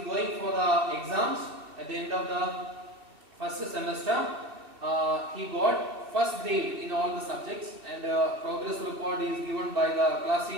going for the exams at the end of the first semester. He got first grade in all the subjects, and progress report is given by the class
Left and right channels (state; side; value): late; left; 2.6 ms